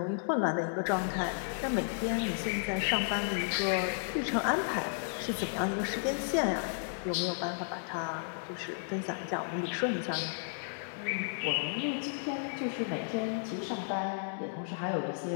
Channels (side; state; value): right; silent; 56 dB below the other